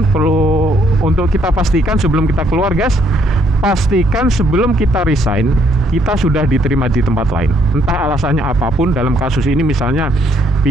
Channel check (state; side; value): normal; both; correlation 0.69